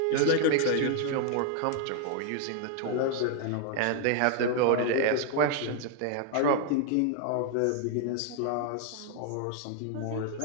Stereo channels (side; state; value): both; different; correlation 0.00